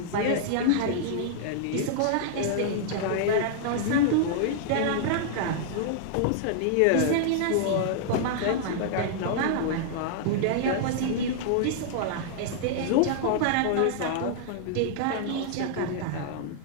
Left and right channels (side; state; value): both; different; correlation -0.01